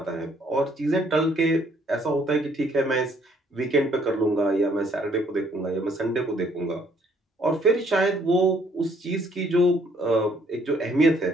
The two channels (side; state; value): both; normal; correlation 0.64